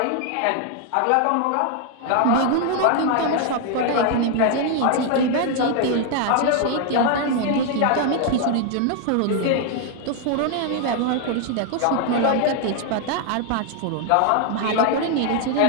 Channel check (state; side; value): different; both; correlation 0.00